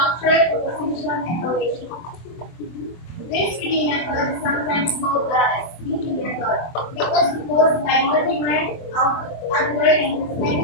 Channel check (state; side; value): late; right; 24 ms